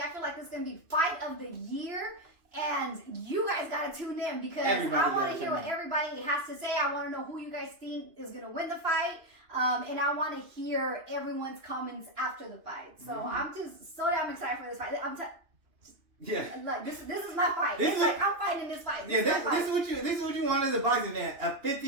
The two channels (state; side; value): late; left; 2.8 ms